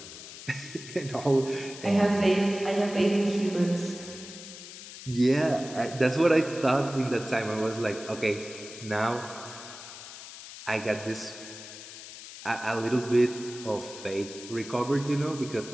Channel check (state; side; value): noise; left; hiss, 13 dB below the sound